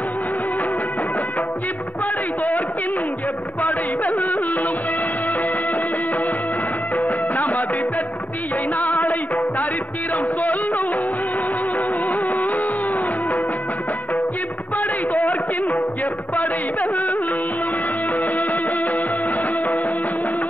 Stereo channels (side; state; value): right; late; 0.077 ms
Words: இப்படை தோற்கின் எப்படை வெல்லும். நமது வெற்றியை நாளை சரித்திரம் சொல்லும். இப்படை தோற்கின் எப்படை வெல்லும்.